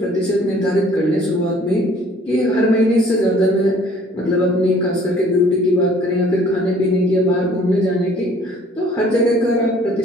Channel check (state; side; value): normal; both; correlation 0.56